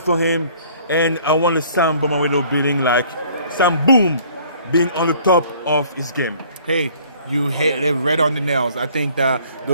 him. And I want Sam Bomawelo Boom being on the top of his game. Hey, you hit it right on the nails. I think that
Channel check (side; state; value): both; inverted; correlation -0.55